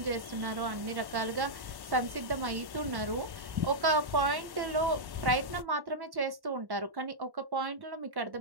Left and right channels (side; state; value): left; late; 1.1 ms